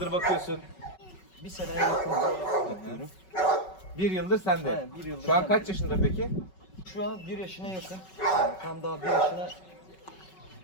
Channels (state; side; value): late; right; 5.3 ms